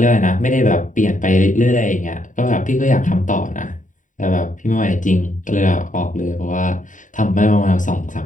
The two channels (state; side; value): late; right; 0.37 ms